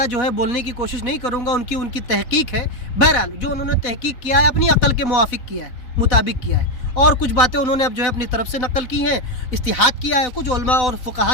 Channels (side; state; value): right; late; 4.0 ms